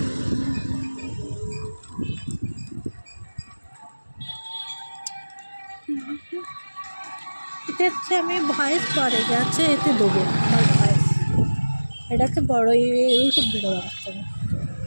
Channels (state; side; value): inverted; both; correlation -1.00